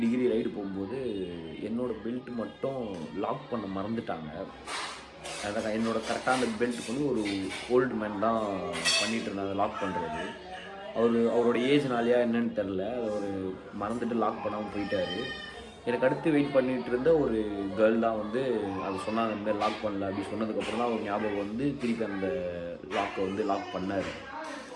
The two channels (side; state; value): both; identical; correlation 1.00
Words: டிகிரி ரைடு போகும்போது என்னோடய பெல்ட் மட்டும் லாக் பண்ண மறந்துட்டாங்க. அதான் என்னோடய கரெக்டாக அந்த பெல்ட்டுக்கு வந்து ஒரு ஓல்டு மேன் தான் பண்ணிகிட்டு இருந்தாங்க லாக் பண்ணுறது. அவரோட ஏஜ்னாலையா என்னன்னு தெரில, அவர் மறந்துட்டு லாக் பண்ணாமல் போயிட்டார். எனக்கு அடுத்து வெயிட் பண்ணிகிட்டு இருந்த ஒரு கேர்ள் தான் வந்து அதை சொன்னாங்க, இந்த மாதிரி லாக் பண்ணல அப்படி சொன்னதுக்கப்புறம் தான் அவர் ஞாபகம் வந்து திருப்பி அந்த லாக்கை வந்து லாக் பண்ணார்.